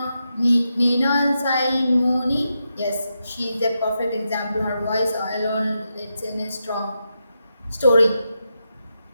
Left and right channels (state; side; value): inverted; both; correlation -0.86